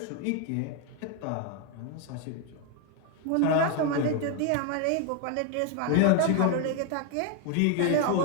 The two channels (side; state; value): both; different; correlation 0.01